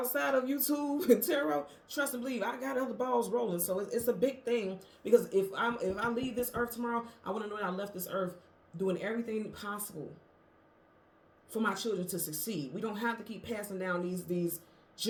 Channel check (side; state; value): both; identical; correlation 1.00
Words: of YouTube and tarot, trust and believe, I got other balls rolling. So it's a big thing, because if I leave this earth tomorrow, I want to know that I left this earth doing everything possible for my children to succeed. We don't have to keep passing down these